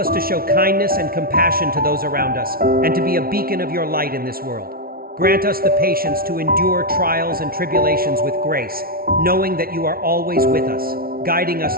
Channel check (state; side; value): late; left; 0.43 ms